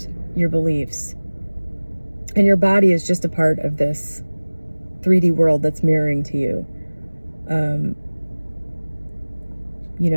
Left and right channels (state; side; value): inverted; both; correlation -1.00